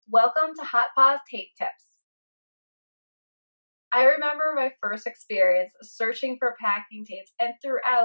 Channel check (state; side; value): inverted; both; correlation -1.00